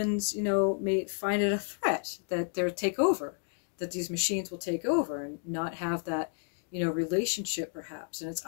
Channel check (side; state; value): right; silent; 57 dB below the other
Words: you know, may find it a threat that they'll take over, that these machines will take over and not have that, you know, relationship perhaps. And it's